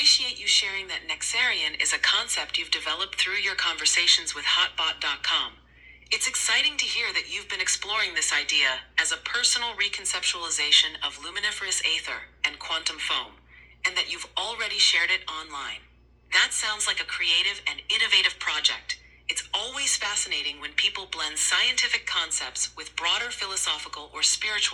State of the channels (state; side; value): identical; both; correlation 1.00